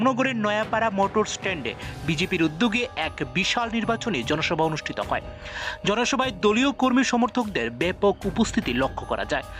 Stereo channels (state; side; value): identical; both; correlation 1.00